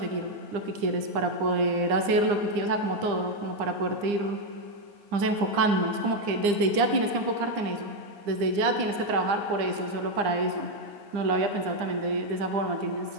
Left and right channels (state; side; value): late; left; 9.8 ms